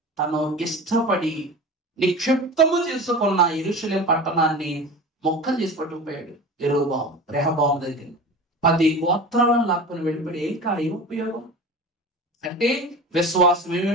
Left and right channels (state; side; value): normal; both; correlation 0.33